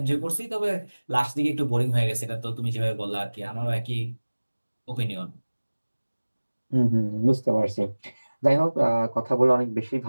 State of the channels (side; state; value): both; inverted; correlation -1.00